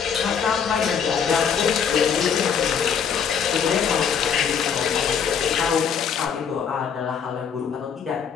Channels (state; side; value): quieter; right; 7.1 dB